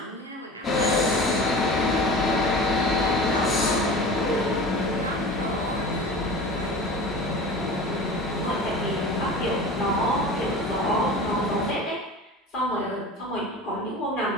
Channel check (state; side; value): normal; both; correlation 0.36